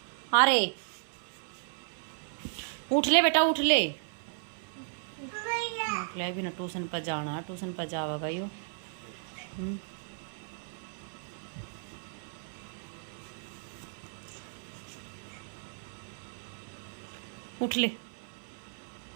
अरे उठ ले बेटा उठ ले। भी ना ट्यूशन पर जाना, ट्यूशन पर जाएगा यो। उठ ले।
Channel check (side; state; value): left; silent; 55 dB below the other